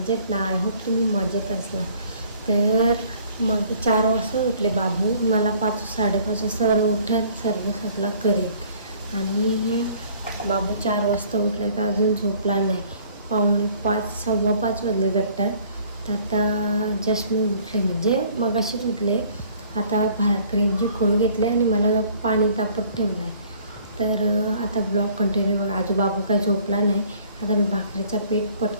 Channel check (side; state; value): both; inverted; correlation -0.56